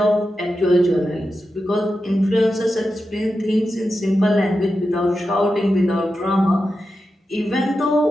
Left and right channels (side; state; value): both; normal; correlation 0.90